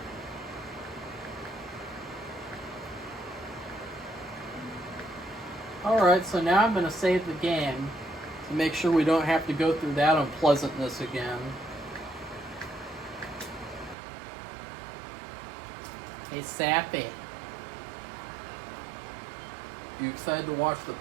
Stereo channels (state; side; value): drops out; left; at 14.0 s